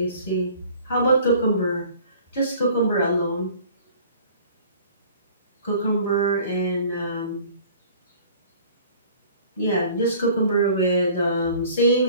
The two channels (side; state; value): both; inverted; correlation -0.50